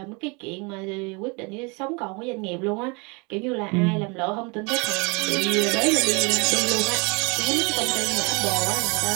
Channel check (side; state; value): left; quieter; 30.3 dB